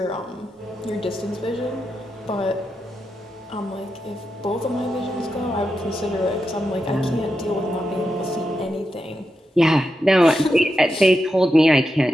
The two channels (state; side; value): normal; both; correlation 0.87